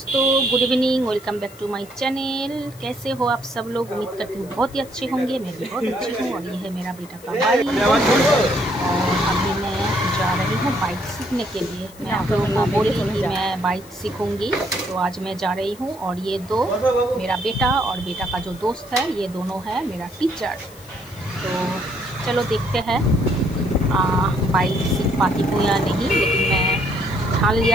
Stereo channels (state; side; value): noise; left; hiss, 22 dB below the sound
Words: good evening. Welcome back to my channel. कैसे हो आप सब लोग? उम्मीद करती हूँ बहुत ही अच्छे होंगे। मैं भी बहुत अच्छी हूँ। और ये है मेरा बेटा का बाइक और अभी मैं जा रही हूँ बाइक सीखने के लिए। मैं आप लोगों को बोली कि मैं बाइक सीखूंगी, तो आज मैं जा रही हूँ। और ये दो, मेरा बेटा और बेटा का जो दोस्त है, ये दोनों है मेरा टीचर। तो चलो देखते हैं बाइक सीख पाती हूँ या नहीं, लेकिन मैं ठान